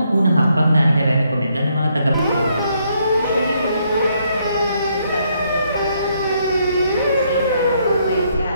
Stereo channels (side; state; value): both; inverted; correlation -0.73